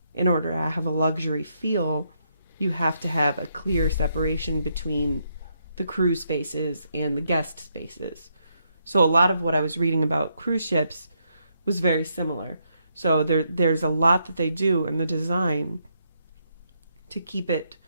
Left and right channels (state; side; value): inverted; both; correlation -0.77